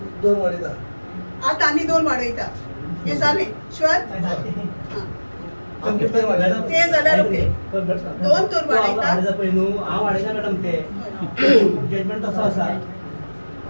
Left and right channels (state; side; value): inverted; both; correlation -1.00